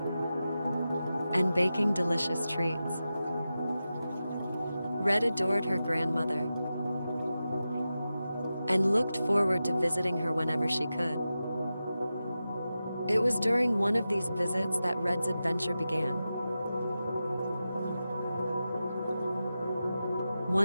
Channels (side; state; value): both; inverted; correlation -0.92